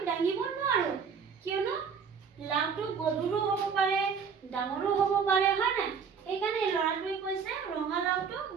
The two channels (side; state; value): left; quieter; 6.2 dB